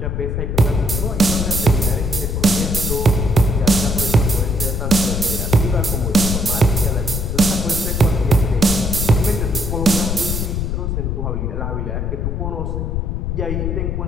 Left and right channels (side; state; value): left; noise; rumble, 1 dB below the sound